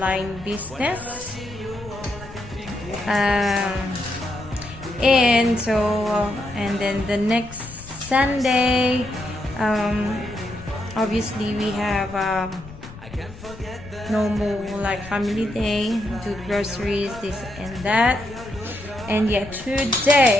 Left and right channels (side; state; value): left; noise; rumble, 16 dB below the sound